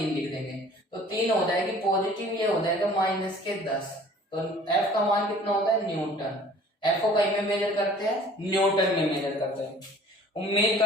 लिख देंगे। तो 3 हो जाएगी पॉजिटिव, ये हो जाएगा माइनस के 10। तो F का मान कितना होता है, न्यूटन। F को कहीं में मेजर करते हैं, न्यूटन में मेजर करते हैं। उम्मीद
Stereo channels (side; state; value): both; normal; correlation 0.50